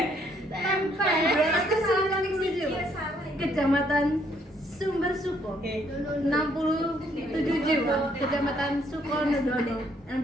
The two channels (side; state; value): both; normal; correlation 0.68